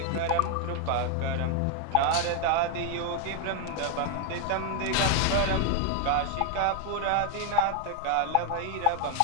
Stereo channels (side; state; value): both; different; correlation 0.01